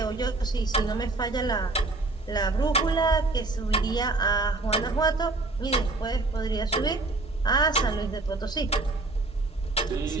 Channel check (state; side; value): quieter; left; 3.2 dB